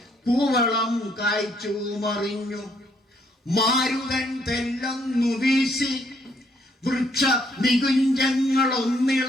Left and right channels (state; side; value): normal; both; correlation 0.69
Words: പൂവളം കായ്ച്ചു മറിഞ്ഞു. മാരുതൻ തെല്ലൊന്നു വീശി, വൃക്ഷ